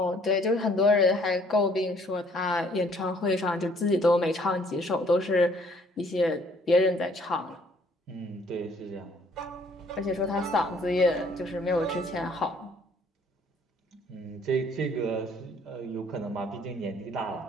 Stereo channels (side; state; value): both; normal; correlation 0.61